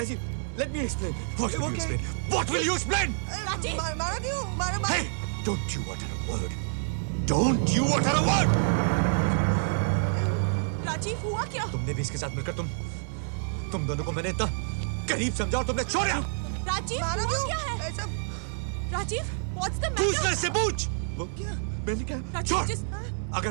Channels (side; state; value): left; silent; digital silence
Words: let me explain. What will you explain? What will you explain? Rajiv! मारा क्यों? मारा Hey, don't you utter a word. Don't you utter a word. Rajiv हुआ क्या? तुमने भी इसके साथ मिलकर तुम दोनों को मैंने इतना करीब समझा और तुमने छोड़ा। राजीव मारा हुआ क्यों? क्या है? ऐसा राजीव, what's the पूछ matter? ले से पूछ। वो क्या? मैंने क्या? राजीव, छोड़। just